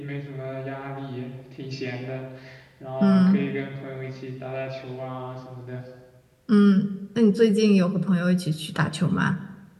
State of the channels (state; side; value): identical; both; correlation 1.00